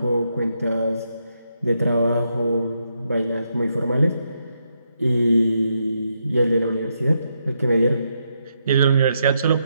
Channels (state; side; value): inverted; both; correlation -0.80